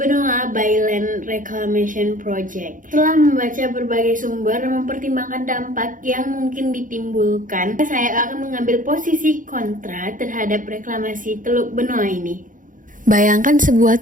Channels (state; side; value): late; left; 0.39 ms